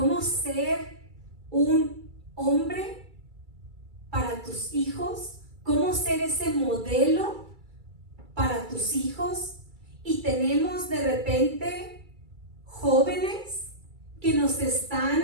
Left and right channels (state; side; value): late; left; 2.3 ms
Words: ser un hombre para tus hijos? ¿Cómo ser ese modelo para tus hijos? Y tenemos de repente jóvenes que nos están